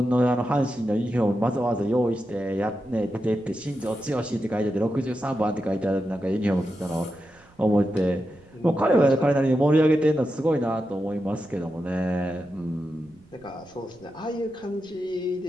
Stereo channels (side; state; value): right; noise; rumble, 28 dB below the sound